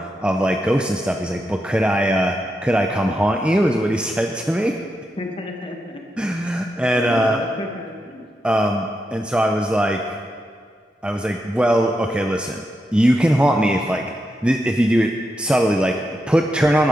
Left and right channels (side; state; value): both; normal; correlation 0.85